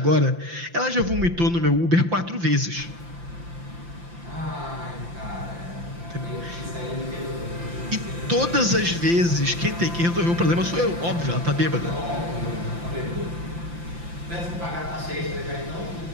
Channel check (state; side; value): late; left; 5.8 ms